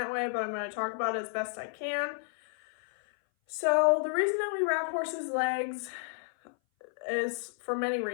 way, but I'm going to talk about it as best I can. So the reason that we wrap horses' legs is for many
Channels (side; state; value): right; silent; 57 dB below the other